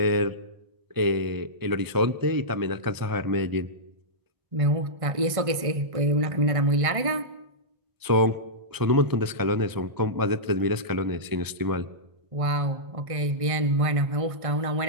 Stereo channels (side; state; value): left; late; 1.5 ms